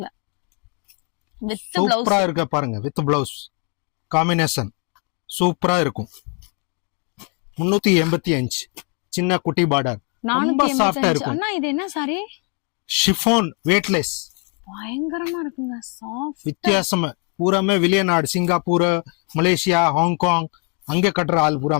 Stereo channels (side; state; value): right; quieter; 35.1 dB